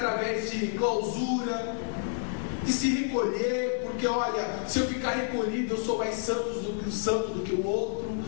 de clausura, de se recolher, porque olha, se eu ficar recolhido, eu sou mais santo do que o outro,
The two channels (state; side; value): silent; right; digital silence